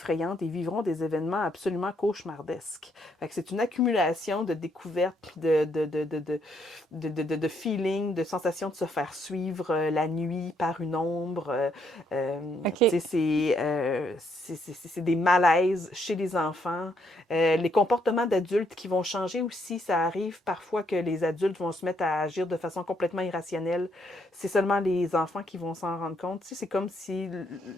et vivront des événements absolument cauchemardesques. Fait que c'est une accumulation de découvertes, de feelings, de sensations de se faire suivre la nuit par une ombre. Okay. C'est des malaises chez les enfants. Les comportements d'adultes qui vont changer aussi, ça arrive parfois que les adultes vont se mettre à agir de façon complètement irrationnelle. C'est seulement les enfants qui vont s'en rendre compte. Tu sais, c'est comme si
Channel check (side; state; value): both; normal; correlation 0.73